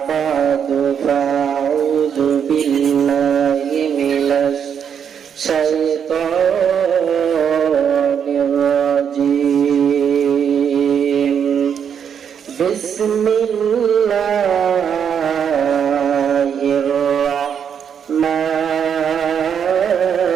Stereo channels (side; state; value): left; quieter; 7.8 dB